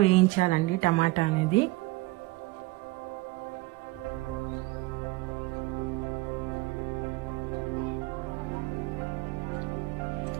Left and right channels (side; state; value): left; quieter; 21.7 dB